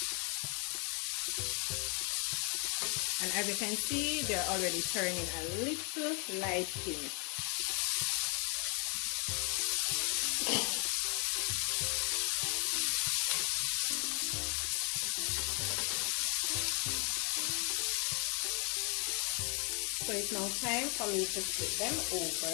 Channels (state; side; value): quieter; right; 35.5 dB